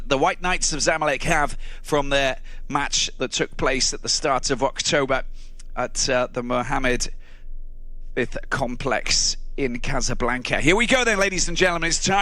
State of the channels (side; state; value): right; noise; hum, 29 dB below the sound